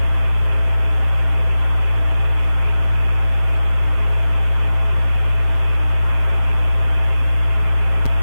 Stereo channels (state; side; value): late; right; 7.7 ms